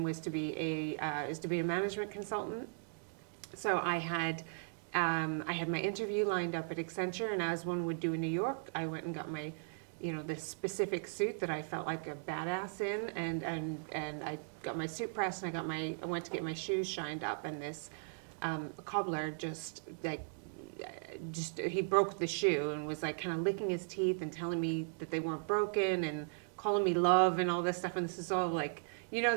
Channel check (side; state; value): left; silent; digital silence